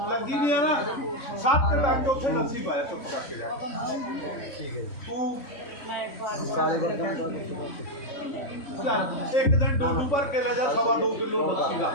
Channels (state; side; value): late; right; 3.6 ms